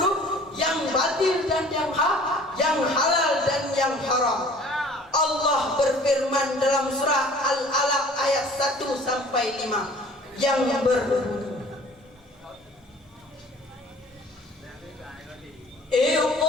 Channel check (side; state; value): both; normal; correlation 0.50